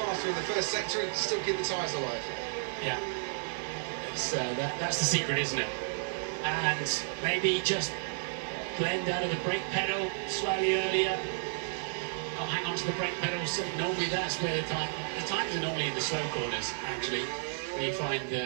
in the first sector and still keep the tyres alive. Yeah. That's the secret, isn't it? And maybe just blend out of the brake pedal slightly earlier. Not hang on to the brake pedal. So normally that's where the times are normally in the slow corners, actually, where you find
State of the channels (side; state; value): left; silent; digital silence